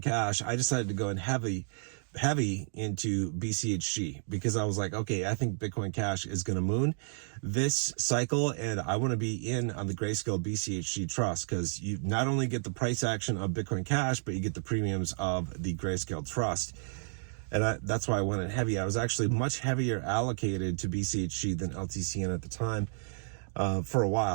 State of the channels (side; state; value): left; silent; digital silence